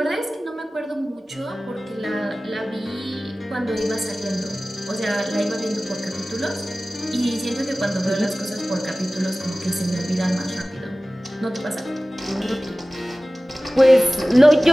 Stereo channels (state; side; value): normal; both; correlation 0.97